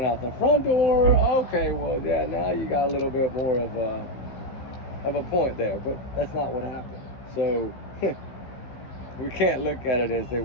out the front door, okay, well, yeah, now you got a little bit more of a point there, but that's not what happened. So we can't look at it as they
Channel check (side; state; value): right; late; 15 ms